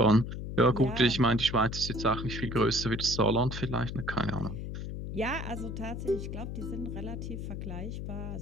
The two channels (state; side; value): noise; left; hum, 6 dB below the sound